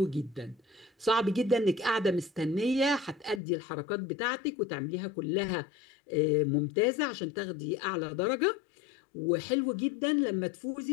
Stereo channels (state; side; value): drops out; right; at 3.4 s